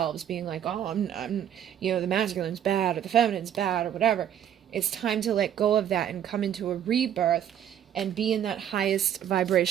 being like, oh, I'm the masculine's bad, or the feminine's bad, or whatever. It's time to let go of that and come into a rebirth and be in that highest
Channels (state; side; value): quieter; left; 9.9 dB